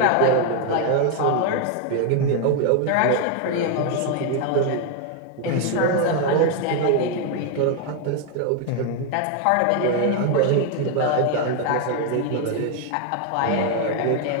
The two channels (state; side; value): different; both; correlation 0.01